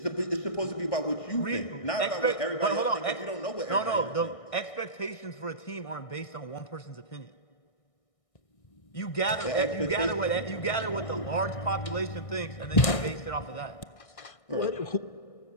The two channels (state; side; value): late; right; 1.6 ms